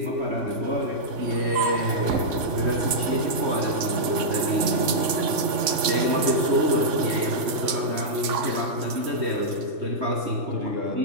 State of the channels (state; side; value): late; left; 3.5 ms